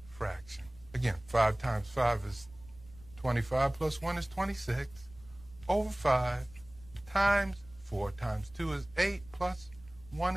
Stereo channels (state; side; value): noise; right; rumble, 22 dB below the sound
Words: fraction. Again, 5 times 5 is 25 plus 1 is 26 over 5 times 4 times 2 is 8 plus